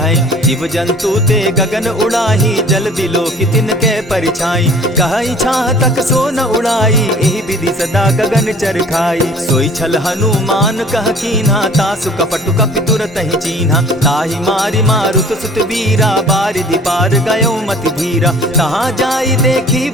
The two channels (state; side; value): normal; both; correlation 0.49